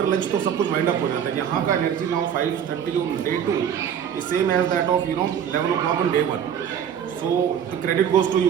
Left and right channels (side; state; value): left; quieter; 8.7 dB